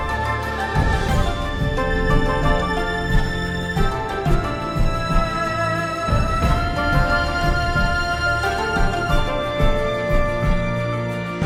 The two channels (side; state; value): both; identical; correlation 1.00